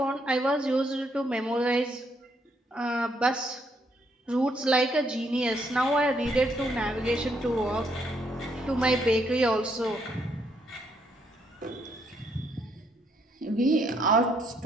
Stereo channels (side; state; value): both; normal; correlation 0.73